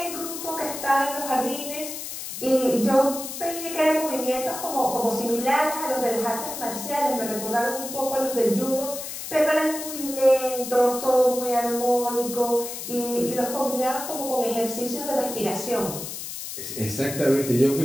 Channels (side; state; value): left; noise; hiss, 8 dB below the sound